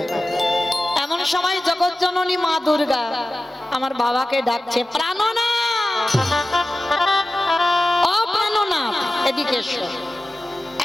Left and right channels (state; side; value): normal; both; correlation 0.95